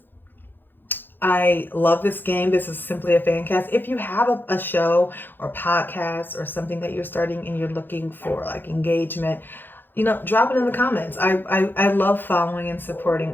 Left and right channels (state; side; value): late; right; 0.096 ms